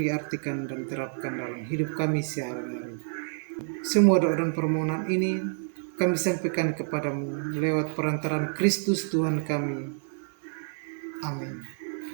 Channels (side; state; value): left; silent; digital silence